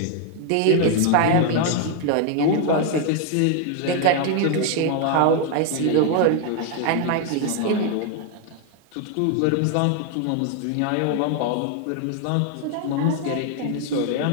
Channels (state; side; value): different; both; correlation 0.00